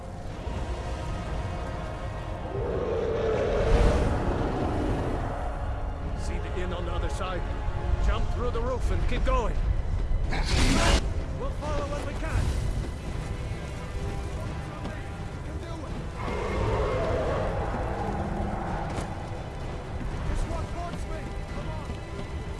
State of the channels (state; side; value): identical; both; correlation 1.00